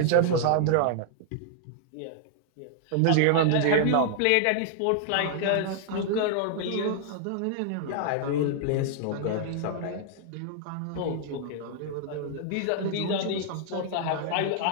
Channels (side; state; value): both; different; correlation -0.01